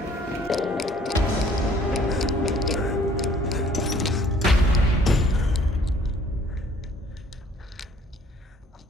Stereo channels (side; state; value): both; normal; correlation 0.58